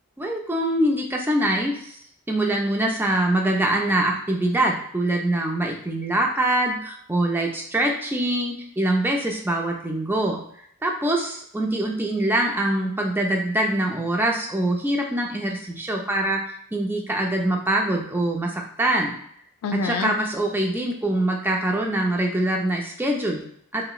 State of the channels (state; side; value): normal; both; correlation 0.59